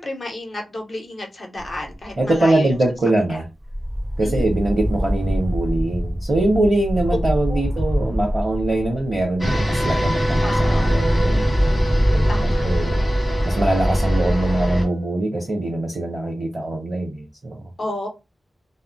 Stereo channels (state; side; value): normal; both; correlation 0.94